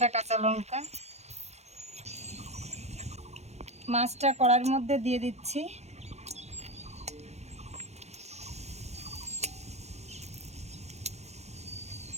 কাঁচা লঙ্কা। মাছটা কড়াইয়ের মধ্যে দিয়ে দিচ্ছি।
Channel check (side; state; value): left; late; 0.32 ms